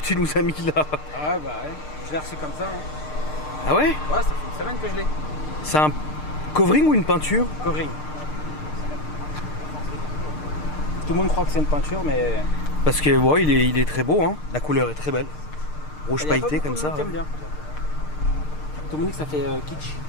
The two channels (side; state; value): right; late; 6.6 ms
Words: nous as mis là. Ah ouais, bah ouais. Je l'ai reçu comme ça. Hein. Ah ouais? Ouais, ça fait une semaine que je l'ai. C'est un covering ou une peinture? Covering. Tout le monde croit que c'est une peinture, mais... Parce que ouais, il est très beau hein. La couleur est très belle. Rouge pailleté comme ça. J'aime bien. Tout le monde dit que ça fait kitsch.